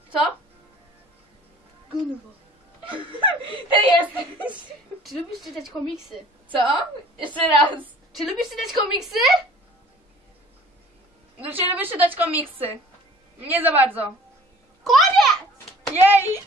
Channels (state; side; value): normal; both; correlation 0.50